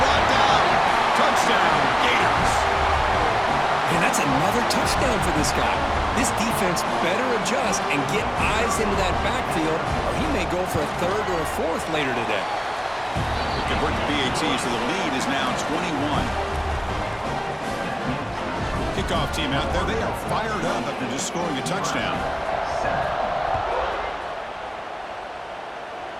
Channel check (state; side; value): identical; both; correlation 1.00